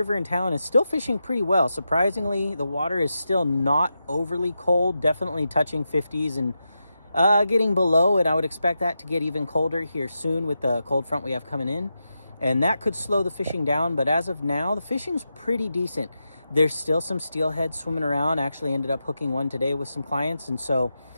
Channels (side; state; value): both; inverted; correlation -0.88